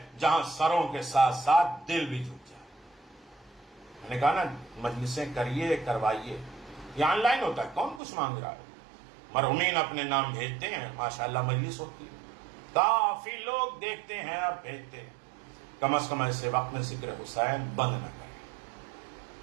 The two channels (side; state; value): left; drops out; at 8.0 s